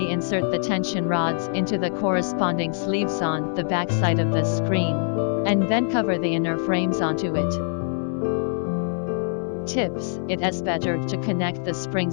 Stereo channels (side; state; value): right; silent; 62 dB below the other